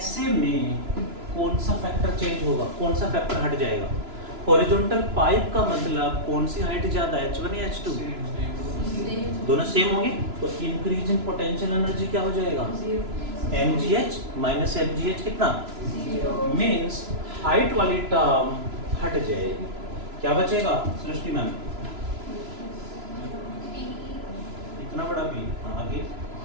में कौन सा फैक्टर चेंज होगा, कौन सा फैक्टर हट जाएगा? हॉरिजॉन्टल पाइप का मतलब कौन सी हाइट ज्यादा है, H1 या H2? दोनों सेम होंगे तो इंक्रीज इन पोटेंशियल एनर्जी क्या हो जाएगा? mgh माइनस mgh कितना? मीन्स हाइट वाली टर्म हट जाएगी, क्या बचेगा सृष्टि मैम? इतना बड़ा P, आगे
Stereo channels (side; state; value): left; late; 3.0 ms